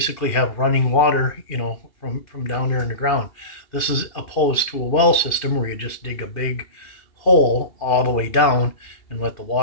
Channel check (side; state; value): right; late; 2.8 ms